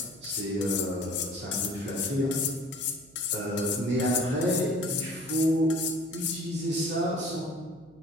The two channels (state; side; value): noise; right; hum, 26 dB below the sound